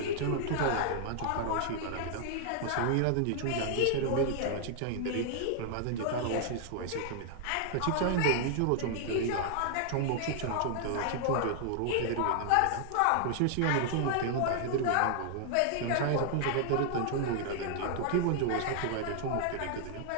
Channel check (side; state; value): both; different; correlation -0.01